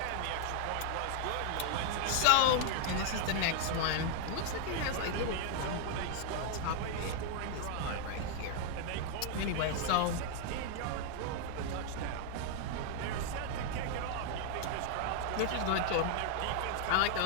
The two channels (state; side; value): different; both; correlation 0.00